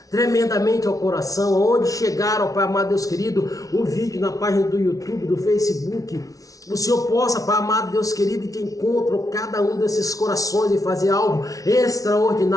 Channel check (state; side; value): late; right; 0.17 ms